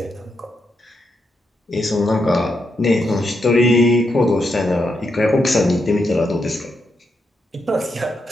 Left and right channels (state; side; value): normal; both; correlation 0.82